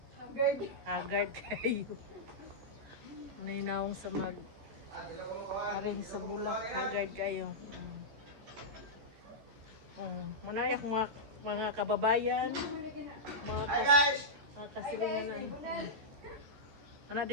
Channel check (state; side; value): late; left; 14 ms